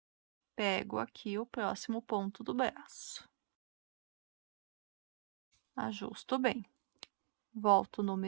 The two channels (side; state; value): left; silent; digital silence